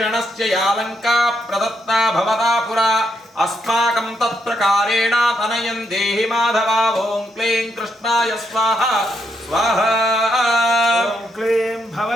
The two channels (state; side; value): normal; both; correlation 0.79